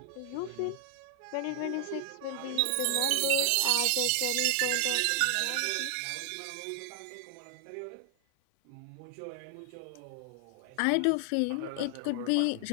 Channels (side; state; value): both; different; correlation 0.00